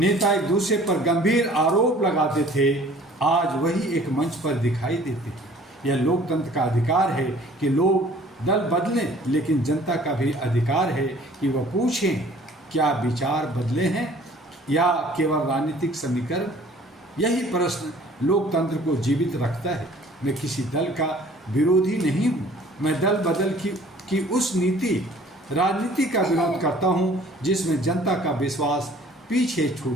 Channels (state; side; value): normal; both; correlation 0.53